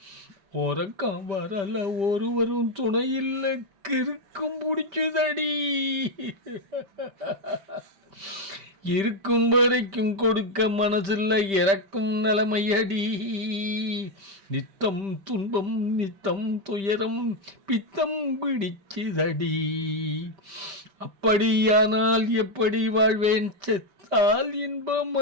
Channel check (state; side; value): late; left; 5.1 ms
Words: உறக்கம் வரல ஒருவரும் துணை இல்லை கிறுக்கும் பிடிச்சுதடி, இருக்கும் வரைக்கும் கொடுக்க மனசில்லை இறக்கும் நிலைமையடி, நித்தம் துன்பம் நித்தம் துயரம் பித்தம் பிடிச்சுதடி, அப்படியானால் எப்படி வாழ்வேன் செத்தால்